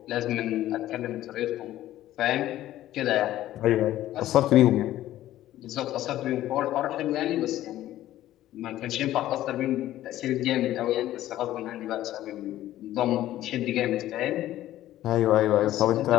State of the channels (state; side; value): quieter; right; 13.9 dB